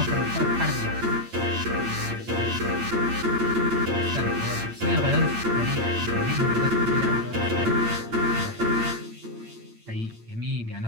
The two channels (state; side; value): late; left; 8.8 ms